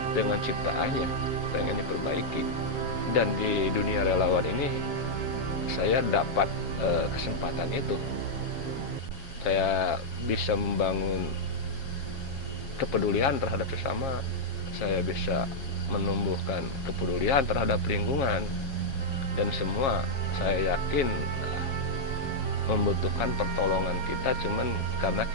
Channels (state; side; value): late; right; 7.3 ms